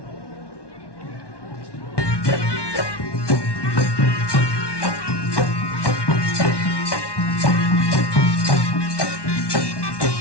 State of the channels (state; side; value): late; right; 1.1 ms